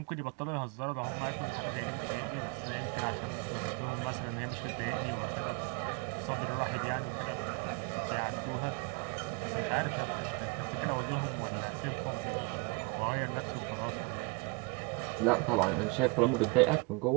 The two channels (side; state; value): left; quieter; 30.1 dB